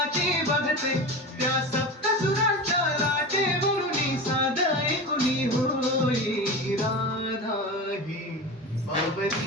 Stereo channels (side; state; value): both; normal; correlation 0.27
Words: बघते त्या सप्तसुरांच्या लाटेवरून साध ऐकुनी होई राधा ही